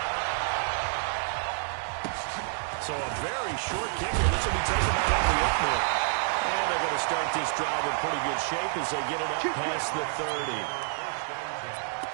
So a very short kicker. This will be taken out of the opener. And they're going to start this drive in pretty good shape as they get it up past the 30.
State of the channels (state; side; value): silent; left; digital silence